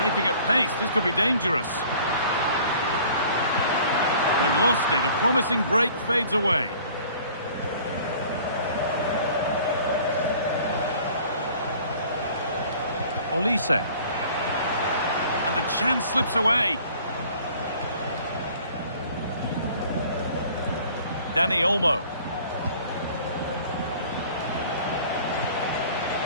at pace, this could be dangerous. They've lost it, a promising break fades away. Olise. And the chance slips away. Dani Olmo.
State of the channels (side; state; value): both; inverted; correlation -0.51